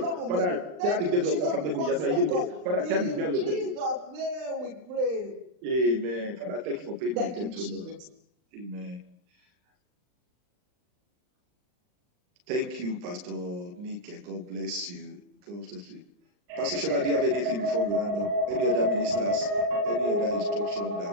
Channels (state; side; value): late; left; 39 ms